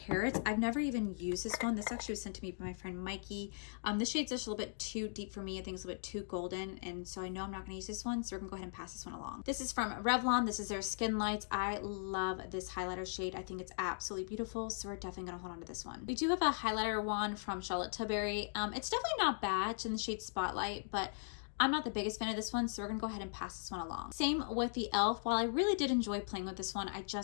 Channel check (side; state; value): right; silent; digital silence